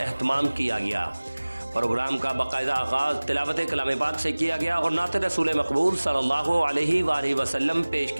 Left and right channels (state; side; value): inverted; both; correlation -1.00